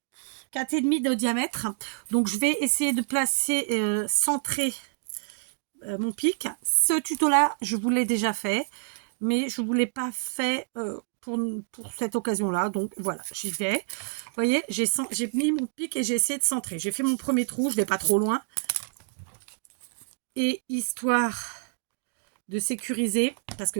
de diamètre. Donc, je vais essayer de placer, centrer mon pic. Ce tuto-là, je vous l'ai déjà fait. Mais je ne vous l'ai pas fait... pour cette occasion-là, donc voilà, j'y vais. Vous voyez, j'ai mis mon pic et j'ai essayé de centrer. J'ai fait mon premier trou, je ne vais pas trop loin. Et histoire de sécuriser, parce que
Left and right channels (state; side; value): silent; left; digital silence